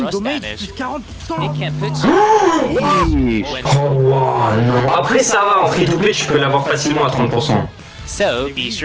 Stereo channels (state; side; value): identical; both; correlation 1.00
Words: rush damage damage. plus 40%. It can put you when Oh wow, non. Après ça va, en free to play tu peux l'avoir facilement à 30%. so be